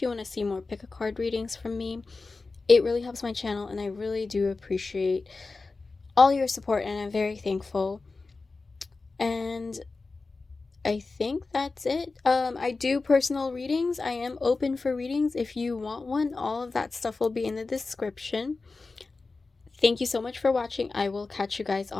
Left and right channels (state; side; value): quieter; right; 3.8 dB